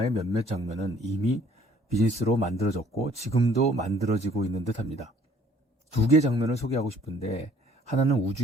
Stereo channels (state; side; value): normal; both; correlation 0.58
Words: 몇몇 장면은 이미 비즈니스로 만들어졌고 지금도 만들어지고 있는 듯합니다. 두 개의 장면을 소개하고 싶은데 하나는